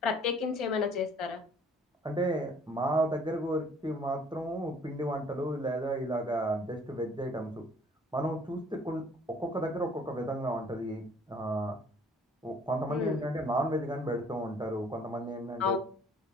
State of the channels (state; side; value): normal; both; correlation 0.57